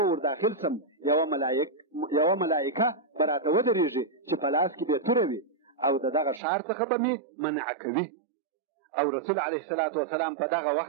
ور داخل سم یوه ملایکه به راته ودرېږي چې په لاس کې به توره وي او د دغه ښار څخه به مې منع کوي. او رسول علیه الصلاة والسلام په دغه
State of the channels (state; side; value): drops out; left; at 6.4 s